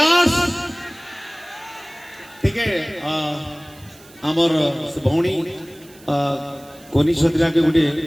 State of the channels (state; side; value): noise; right; hiss, 24 dB below the sound